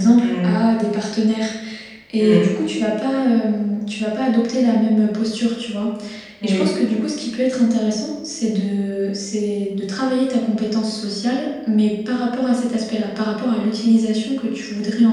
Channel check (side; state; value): both; identical; correlation 1.00